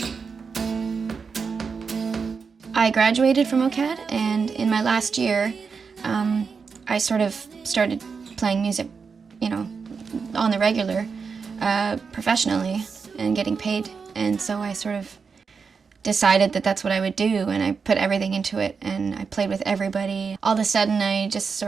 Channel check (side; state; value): left; quieter; 5.4 dB